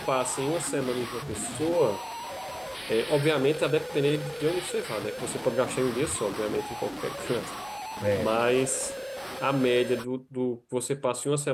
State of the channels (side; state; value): both; identical; correlation 1.00